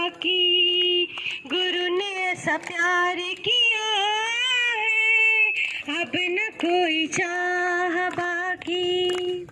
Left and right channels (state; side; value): identical; both; correlation 1.00